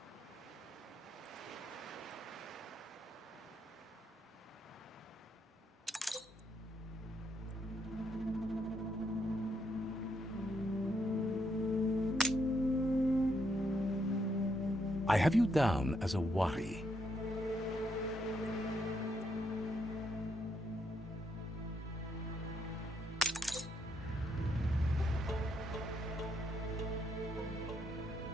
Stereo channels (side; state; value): both; normal; correlation 0.76